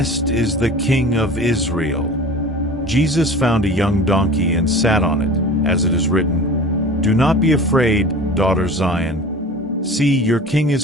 is the King of Israel." Jesus found a young donkey and sat on it, as it is written, "Do not be afraid, daughter Zion. See, your king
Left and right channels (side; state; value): both; normal; correlation 0.39